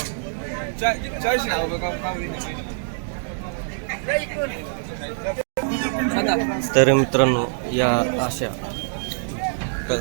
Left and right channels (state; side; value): silent; left; digital silence